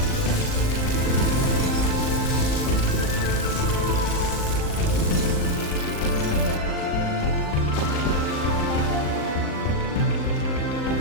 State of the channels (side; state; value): right; late; 39 ms